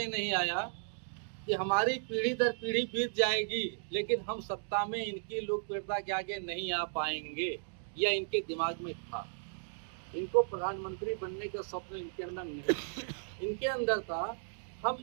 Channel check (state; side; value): silent; left; digital silence